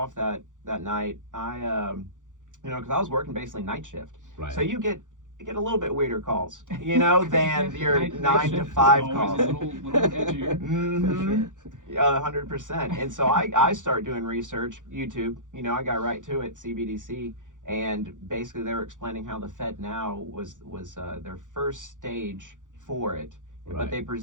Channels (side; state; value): left; late; 0.87 ms